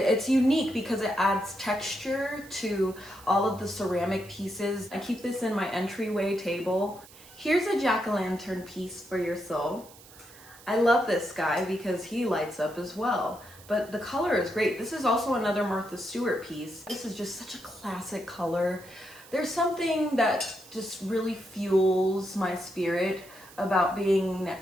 unique because it adds texture to all of the ceramic pieces. I keep this in my entryway table. Here's a jack-o'-lantern piece for your soul. I love this guy because he lights up as well, but the color is great. This is also another Martha Stewart piece. This is just such a classic color. There's something that just really fuels my spirit about being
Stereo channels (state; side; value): noise; right; hiss, 21 dB below the sound